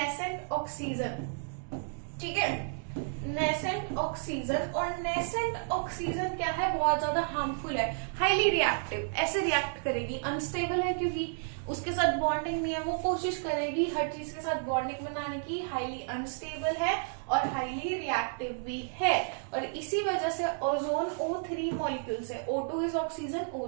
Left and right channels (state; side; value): silent; left; digital silence